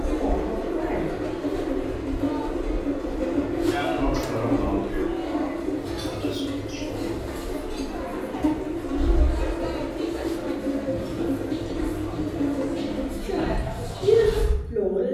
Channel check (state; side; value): identical; both; correlation 1.00